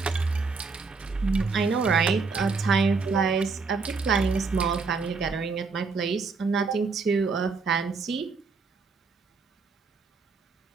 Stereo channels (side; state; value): left; quieter; 4.6 dB